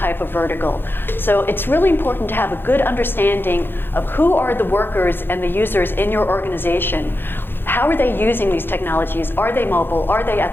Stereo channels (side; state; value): right; late; 0.10 ms